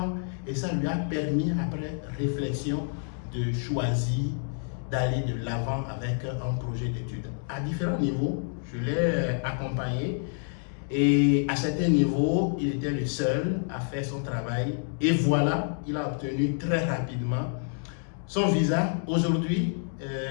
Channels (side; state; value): right; silent; 59 dB below the other